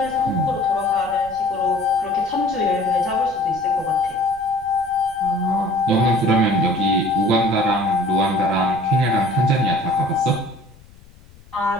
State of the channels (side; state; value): left; noise; rumble, 24 dB below the sound